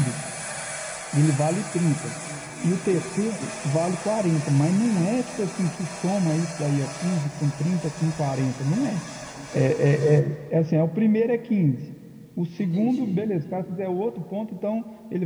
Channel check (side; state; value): both; identical; correlation 1.00